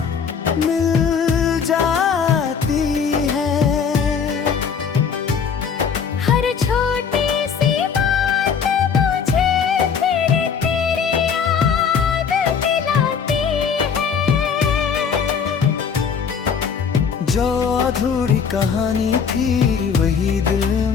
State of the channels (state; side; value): quieter; right; 6.5 dB